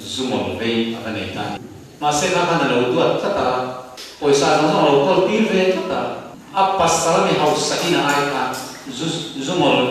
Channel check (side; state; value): both; identical; correlation 1.00